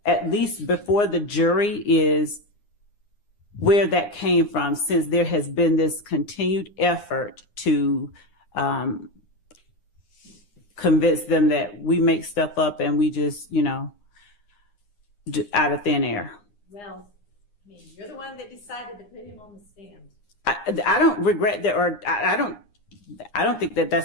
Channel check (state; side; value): late; right; 9.8 ms